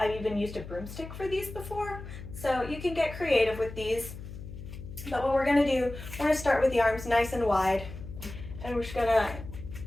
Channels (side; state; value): left; noise; hum, 12 dB below the sound